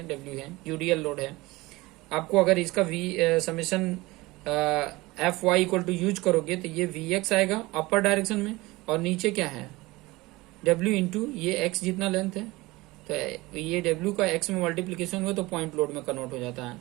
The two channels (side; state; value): left; quieter; 21.0 dB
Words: डब्ल्यू है, यूडीएल लोड है। आपको अगर इसका V summation F Y equal to use करोगे तो ये वी एक्स आएगा अपर डायरेक्शन में, और नीचे क्या है डब्ल्यू इंटू ये एक्स जितना लेंथ है, तो ये डब्ल्यू का एक्स में मल्टीप्लीकेशन हुआ तो पॉइंट लोड में कन्वर्ट हो जाता है,